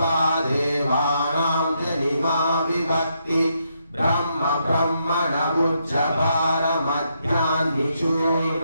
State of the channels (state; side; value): inverted; both; correlation -0.78